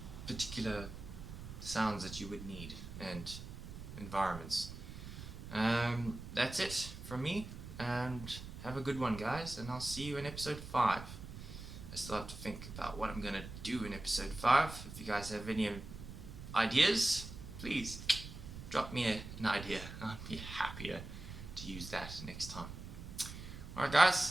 particular sounds that you would need and environments. That's it from me, and have a good one, guys, and I'll see you in episode 5. I still have to think about what I'm going to do in episode 5. If you guys have any ideas, please drop me an idea. I'd be happier to use that next time. Alright,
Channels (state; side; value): noise; right; rumble, 11 dB below the sound